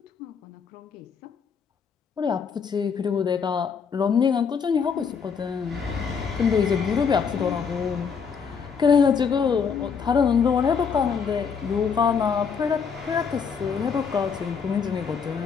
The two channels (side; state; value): right; quieter; 6.2 dB